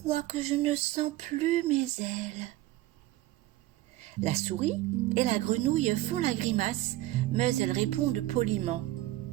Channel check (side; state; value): left; quieter; 16.6 dB